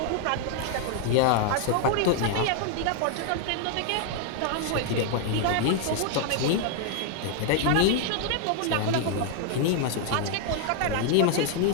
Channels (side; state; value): both; different; correlation 0.00